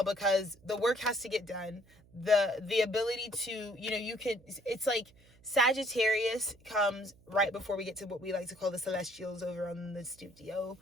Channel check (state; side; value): noise; right; hum, 27 dB below the sound